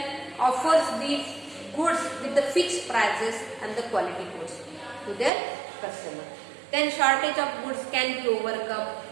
offers the goods with the fixed prices and the quality goods to their customer. Then shortage of goods can be overcome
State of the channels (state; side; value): drops out; left; at 5.3 s